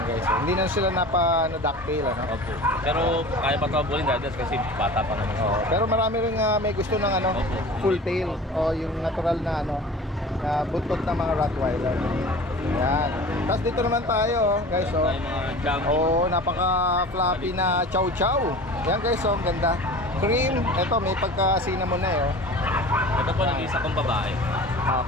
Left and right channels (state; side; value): normal; both; correlation 0.39